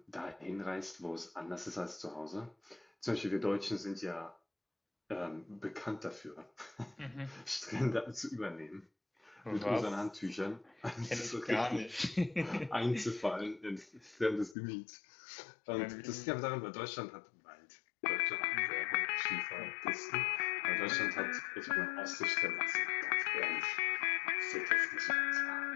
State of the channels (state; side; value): drops out; right; at 14.6 s